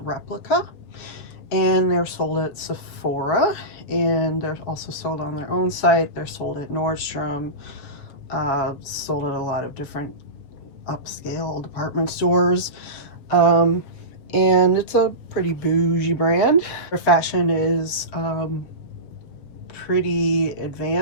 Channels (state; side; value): late; right; 7.0 ms